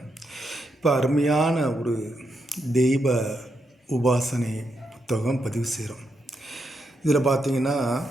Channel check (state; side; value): normal; both; correlation 0.82